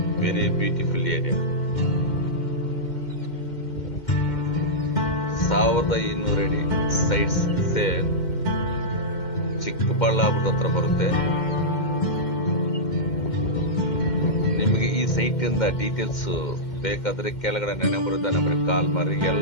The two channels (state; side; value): late; right; 2.1 ms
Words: very beautiful area. 1200 ಅಡಿ sites sale, ಚಿಕ್ಕಬಳ್ಳಾಪುರದ ಹತ್ರ ಬರುತ್ತೆ. ನಿಮಗೆ ಈ site ಇಂದ ಡೀಟೇಲ್ಸ್ ಬೇಕಾದ್ರೆ ಕೆಳಗಡೆ ನಂಬರ್ ಇದ್ದ ನಂಬರ್ಗೆ ಕಾಲ್ ಮಾಡಿ,